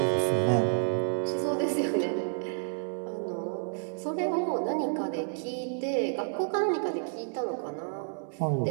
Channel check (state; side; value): silent; left; digital silence